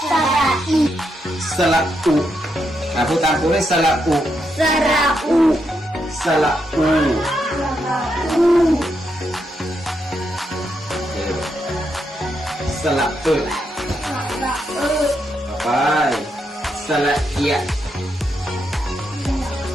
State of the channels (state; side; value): normal; both; correlation 0.81